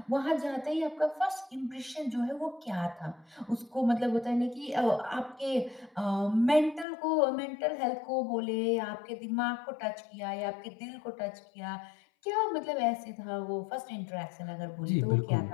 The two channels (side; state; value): right; drops out; at 6.9 s